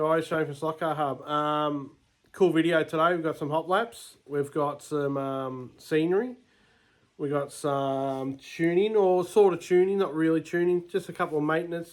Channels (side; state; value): both; identical; correlation 1.00